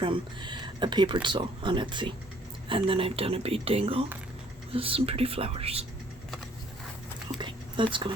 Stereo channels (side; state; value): both; normal; correlation 0.60